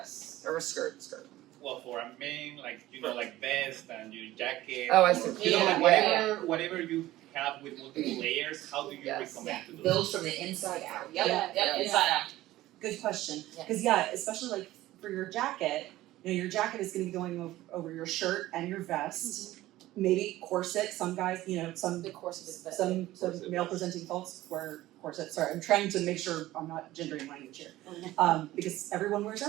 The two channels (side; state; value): left; quieter; 16.0 dB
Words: or a skirt? Well, for a man, like vest and your jacket. Oh, I or, see. like Yeah. whatever you have with multiple layers, how do you Yes. recommend to do Build from the inside out. Yep, inside out. Good question. Yeah. Because yeah, especially like for your jacket, your jacket is going to be going over your shirt and your vest. Maybe corset. Some guys, some The corset is better. some Corset. male presenting folks wear corsets. Sorry, I'm trying to make sure I'm not gendering language here. Because everyone wears